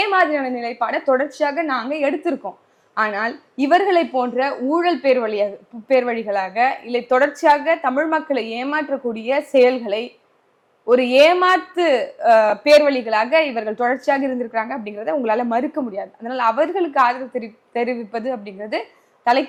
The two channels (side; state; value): both; identical; correlation 1.00